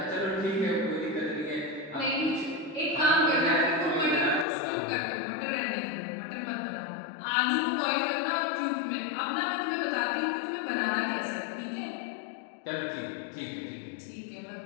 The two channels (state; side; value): drops out; right; at 4.5 s